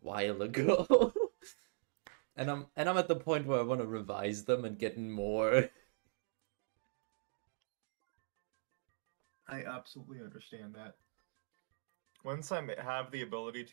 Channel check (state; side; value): silent; left; digital silence